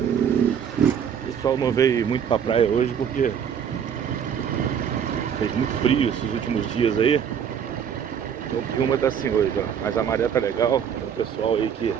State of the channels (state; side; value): quieter; left; 8.0 dB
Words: pessoal não veio muito pra praia hoje porque fez muito frio esses últimos dias aí. Então Piúma tá assim hoje, ó. Mas a maré tá legal. Tem o pessoal aí que